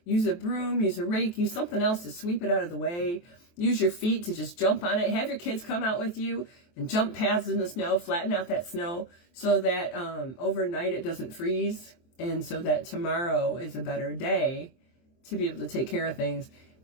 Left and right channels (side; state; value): right; late; 23 ms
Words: Use a broom, use a rake, use something else to sweep it out of the way. Use your feet to just jump on it. Have your kids come out with you and jump paths in the snow, flatten out that snow so that overnight it doesn't freeze, and so that tomorrow is a better day to be able to take care of things.